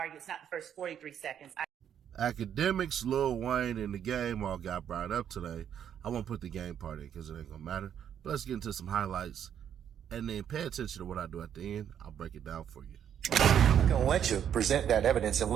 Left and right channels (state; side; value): quieter; left; 9.2 dB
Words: it's not the first 43 seconds. Akademiks, Lil Wayne, and the game all got brought up today. I won't put the game part in because it ain't gonna matter. But let's get into some highlights and then pay attention to what I do at the end. I'll break it down for you. I'm not gonna let you present that evidence